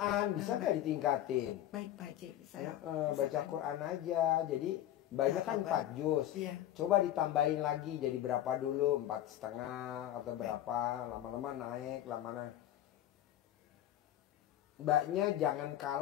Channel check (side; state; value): right; quieter; 12.4 dB